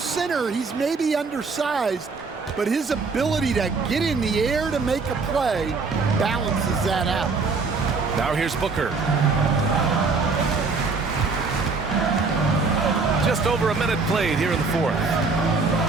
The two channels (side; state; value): left; quieter; 4.3 dB